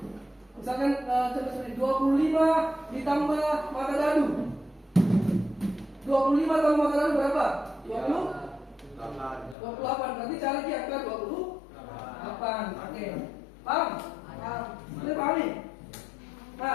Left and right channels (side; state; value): right; drops out; at 9.6 s